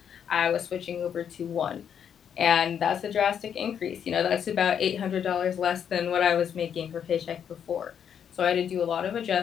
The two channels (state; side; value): quieter; right; 8.3 dB